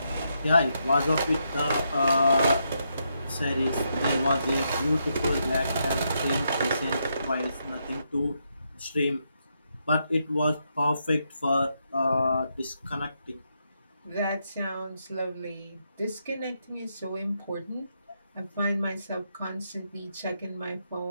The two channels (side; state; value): both; inverted; correlation -0.80